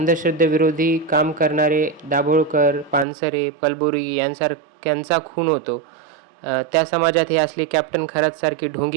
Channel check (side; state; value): left; drops out; at 3.1 s